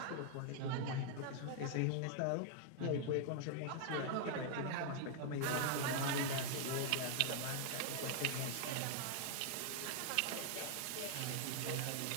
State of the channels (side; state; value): both; different; correlation 0.00